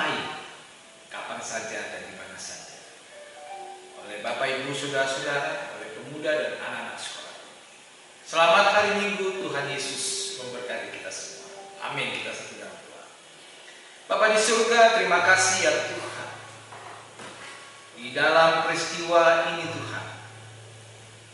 kapan saja dan di mana saja, oleh Bapak Ibu saudara-saudara, oleh pemuda dan anak-anak sekolah. Selamat hari Minggu, Tuhan Yesus memberkati kita semua. Amin. Kita satu dalam doa. Bapa di surga, terima kasih ya Tuhan. Di dalam peristiwa ini Tuhan,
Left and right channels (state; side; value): identical; both; correlation 1.00